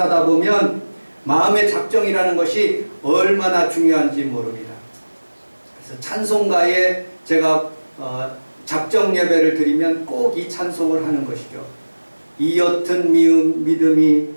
보면 마음의 작정이라는 것이 얼마나 중요한지 모릅니다. 그래서 찬송가에 제가 작정 예배를 드리면 꼭 이 찬송을 하는 것이죠. 이 옅은 믿음이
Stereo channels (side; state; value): both; inverted; correlation -1.00